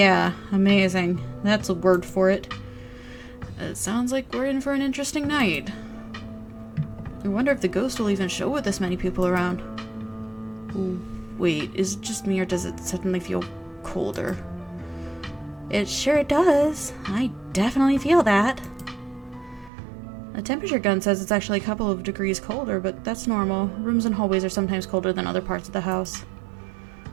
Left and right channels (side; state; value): left; drops out; at 19.7 s